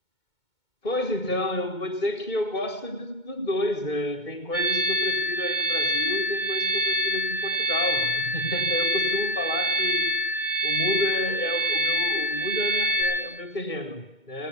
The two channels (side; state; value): right; late; 2.2 ms